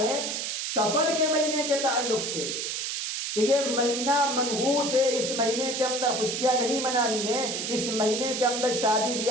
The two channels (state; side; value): noise; right; hiss, 3 dB below the sound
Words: سفر کے مہینے کے تعلق سے کہ یہ مہینہ منحوس ہے، اس مہینے کے اندر خوشیاں نہیں منانی ہیں، اس مہینے کے اندر شادی